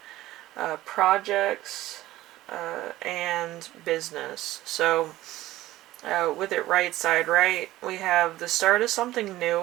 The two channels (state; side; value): quieter; left; 16.0 dB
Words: projects, and business. So with it right side right, we have the start of something new,